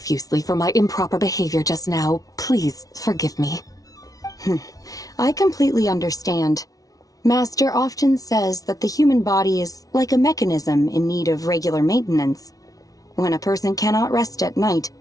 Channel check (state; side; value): late; right; 0.18 ms